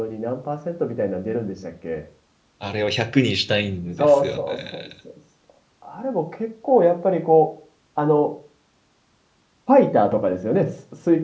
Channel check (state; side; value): identical; both; correlation 1.00